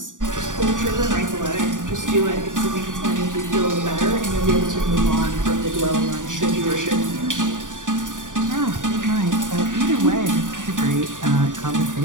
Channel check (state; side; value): late; left; 0.87 ms